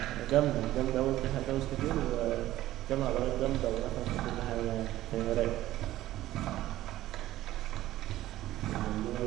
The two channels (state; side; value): quieter; left; 14.9 dB